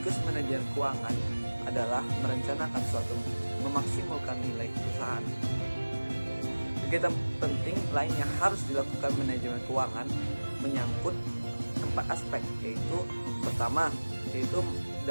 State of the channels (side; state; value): both; inverted; correlation -1.00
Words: manajer keuangan adalah merencanakan suatu memaksimalkan nilai perusahaan. Kegiatan penting lain yang harus dilakukan manajemen keuangan menyangkut 4 aspek, yaitu pertama, yaitu